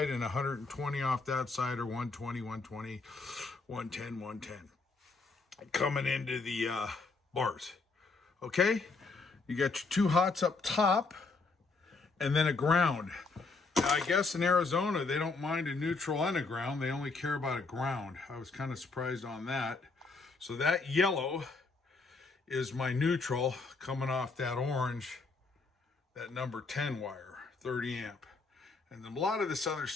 and 120 off that side, or 120, 120, 110, 110. Coming into the bars, okay? You got your two hots up top, and then a ground. Now, I guess in Arizona, they don't mind a neutral and a ground. They only care about a ground. I was kind of surprised on that. So that yellow is my neutral coming off that orange, that number 10 wire, 30 amp. And a lot of this other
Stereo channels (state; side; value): quieter; right; 4.0 dB